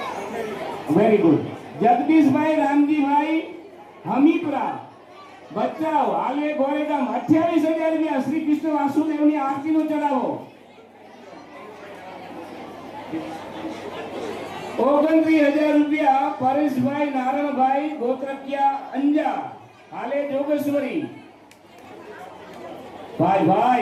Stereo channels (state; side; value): identical; both; correlation 1.00